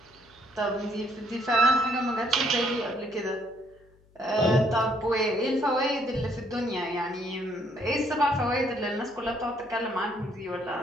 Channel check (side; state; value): left; noise; hum, 30 dB below the sound